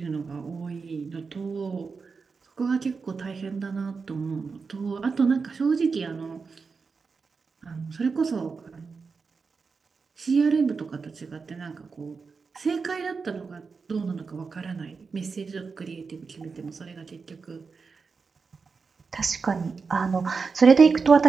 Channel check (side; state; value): left; quieter; 4.9 dB